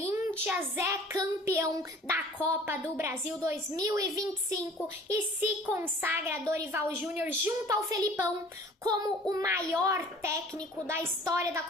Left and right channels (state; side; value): normal; both; correlation 0.49